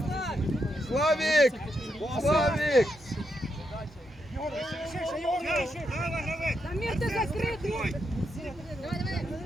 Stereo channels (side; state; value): both; normal; correlation 0.82